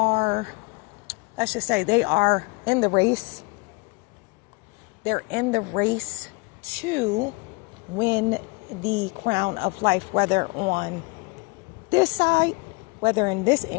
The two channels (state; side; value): quieter; right; 27.6 dB